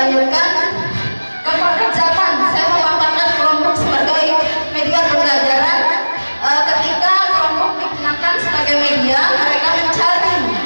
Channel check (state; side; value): inverted; both; correlation -1.00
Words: ke pekerjaan. Saya memanfaatkan kelompok sebagai media pembelajaran. Ketika kelompok digunakan sebagai media, mereka mencari